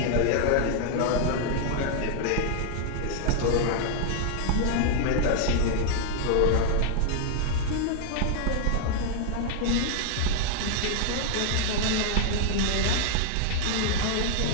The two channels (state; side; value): different; both; correlation -0.01